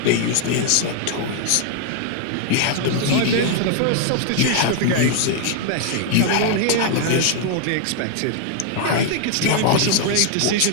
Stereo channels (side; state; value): both; different; correlation 0.00